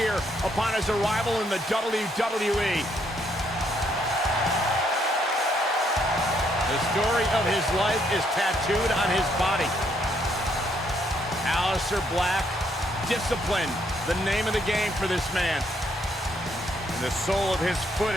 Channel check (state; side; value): normal; both; correlation 0.72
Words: upon his arrival in the WWE. The story of his life is tattooed on his body. Aleister Black, discipline, the name of the game for this man. And the sole of his foot